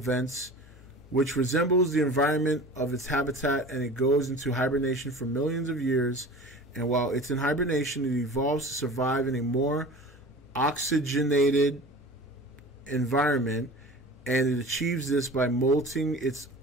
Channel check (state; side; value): normal; both; correlation 0.38